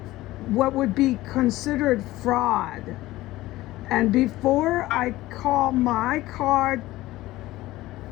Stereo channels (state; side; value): quieter; right; 17.2 dB